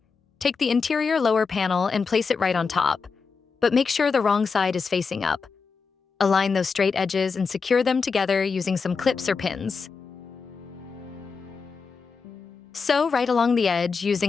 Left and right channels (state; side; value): quieter; right; 5.1 dB